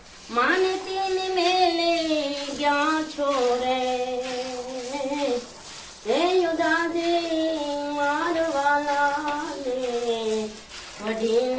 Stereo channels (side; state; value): both; identical; correlation 1.00